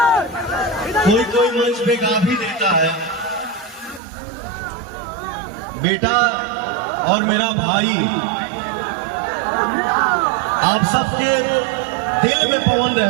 कोई कोई मंच पे गा भी देता है, बेटा और मेरा भाई आप सबके दिल में पवन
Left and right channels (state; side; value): drops out; left; at 4.0 s